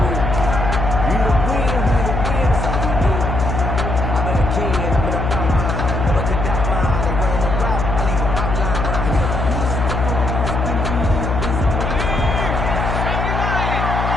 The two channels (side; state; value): left; noise; hum, 1 dB below the sound